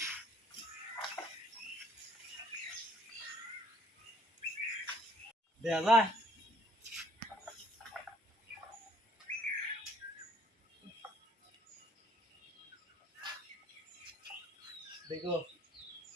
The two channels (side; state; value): both; normal; correlation 0.60